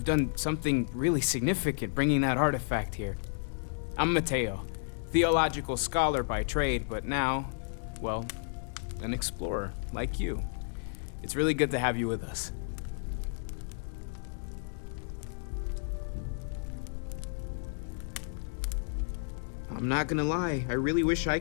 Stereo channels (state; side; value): silent; right; digital silence